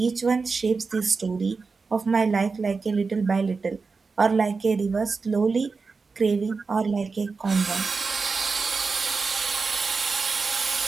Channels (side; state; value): left; quieter; 4.5 dB